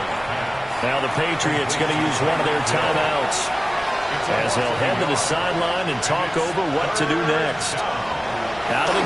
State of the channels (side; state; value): right; noise; rumble, 21 dB below the sound